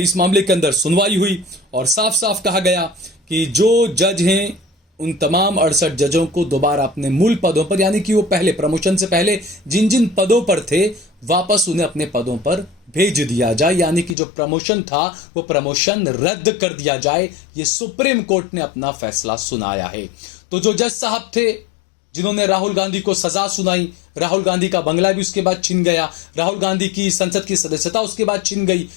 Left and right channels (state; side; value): drops out; right; at 14.2 s